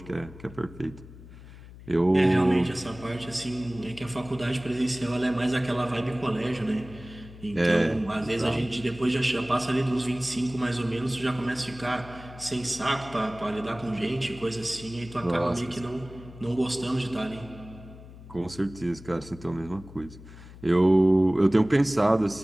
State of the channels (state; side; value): noise; left; hum, 17 dB below the sound